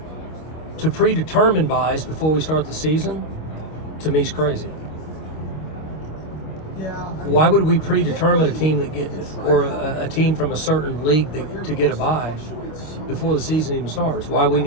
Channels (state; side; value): late; right; 26 ms